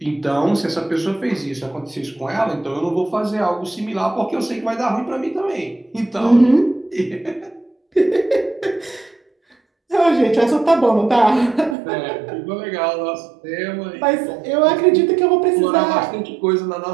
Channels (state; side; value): drops out; left; at 11.8 s